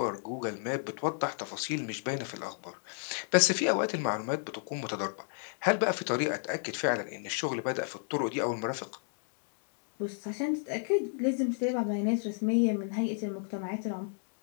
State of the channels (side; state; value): right; silent; digital silence